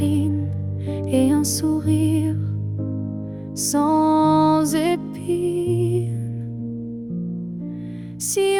et un sourire sans épines. Si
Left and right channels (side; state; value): left; noise; hum, 28 dB below the sound